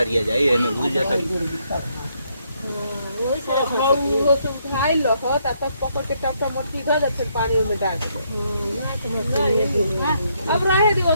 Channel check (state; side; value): inverted; both; correlation -0.74